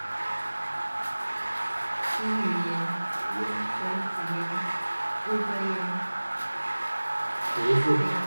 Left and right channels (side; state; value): both; inverted; correlation -1.00